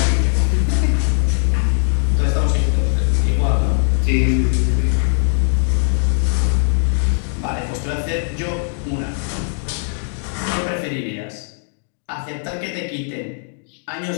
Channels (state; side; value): silent; right; 57 dB below the other